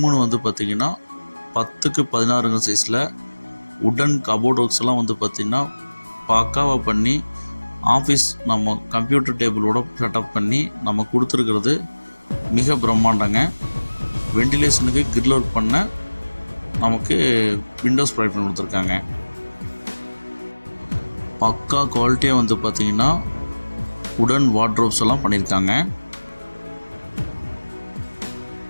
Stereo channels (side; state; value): both; inverted; correlation -1.00